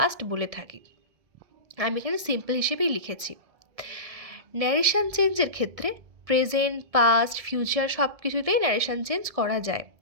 বলে থাকি। আমি এখানে সিম্পল হিসেবেই লিখেছি। ন্যারেশন চেঞ্জের ক্ষেত্রে প্রেজেন্ট, পাস্ট, ফিউচার সব কিছুতেই ন্যারেশন চেঞ্জ করা যায়।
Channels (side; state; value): left; late; 1.6 ms